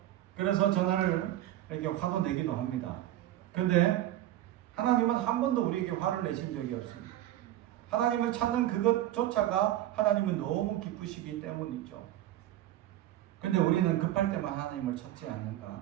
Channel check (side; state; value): left; quieter; 13.6 dB